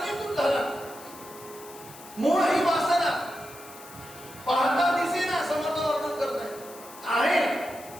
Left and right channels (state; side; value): noise; left; hiss, 18 dB below the sound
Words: झाला. मूळ ही